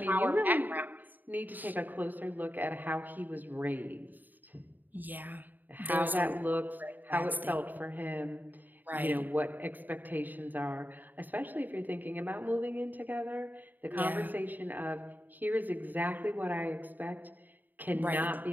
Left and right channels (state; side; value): late; left; 0.087 ms